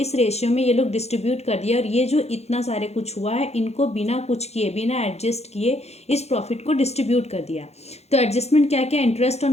रेशियो में ये लोग डिस्ट्रीब्यूट कर दिया और ये जो इतना सारे कुछ हुआ है इनको बिना कुछ किए, बिना एडजस्ट किए इस प्रॉफिट को डिस्ट्रीब्यूट कर दिया। तो एडजस्टमेंट क्या क्या, interest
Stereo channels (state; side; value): late; right; 0.31 ms